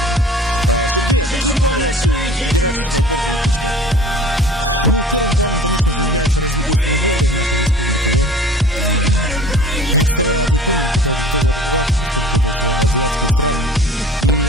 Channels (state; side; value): normal; both; correlation 0.45